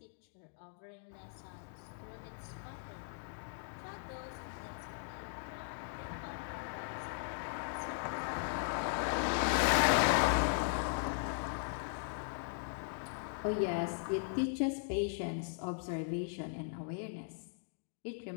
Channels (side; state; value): right; silent; digital silence